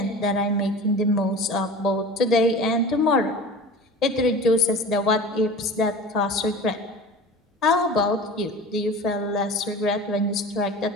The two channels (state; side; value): normal; both; correlation 0.37